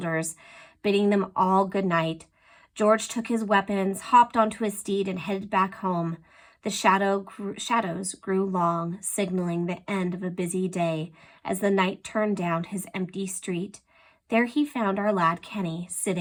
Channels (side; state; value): both; identical; correlation 1.00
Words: bidding them all good night. George took his weapons, hopped onto his steed, and headed back home. The shadows grew long, signaling the end of a busy day as the knight turned down his empty street. There he found our lad Kenny,